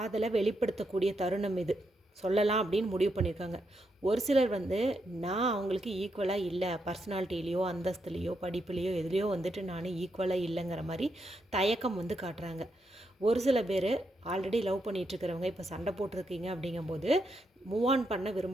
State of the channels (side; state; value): both; normal; correlation 0.81